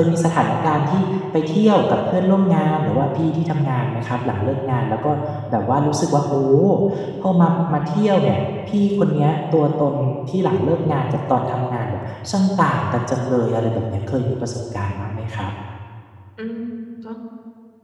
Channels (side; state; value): both; identical; correlation 1.00